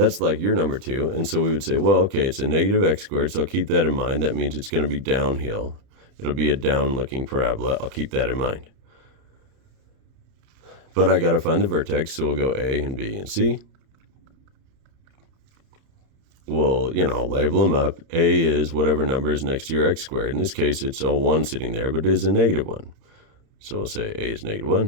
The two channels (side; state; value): left; late; 30 ms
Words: like your number 2. And so we would say, well, okay, it's a -x squared, so I'll keep that in mind. That means it's going to be downhill. It'll be a down-looking parabola. I'll keep that in mind. But I got to find the vertex, so we'll go A and B and C. We'll, label them up. A is whatever number is next to your x squared. In this case, it's a 1 sitting there, but it is a -1. So we'll say A is